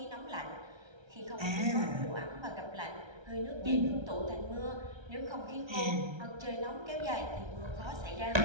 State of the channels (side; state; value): left; late; 1.3 ms